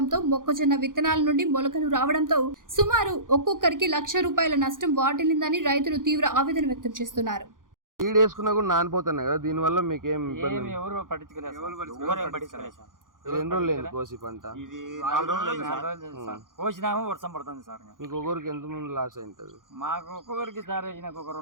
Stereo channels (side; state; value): left; late; 0.89 ms